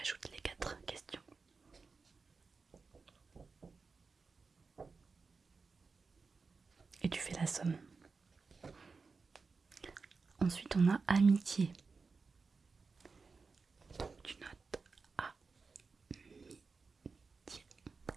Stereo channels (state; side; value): quieter; left; 4.5 dB